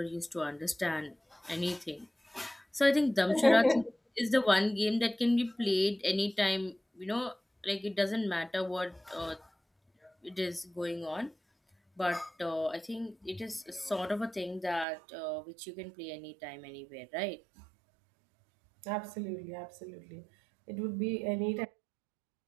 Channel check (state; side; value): drops out; left; at 14.9 s